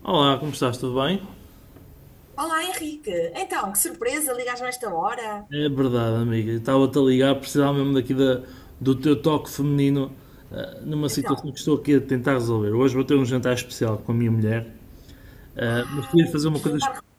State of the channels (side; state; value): both; identical; correlation 1.00